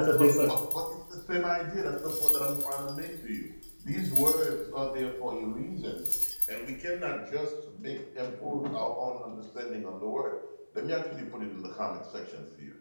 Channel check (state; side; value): inverted; both; correlation -1.00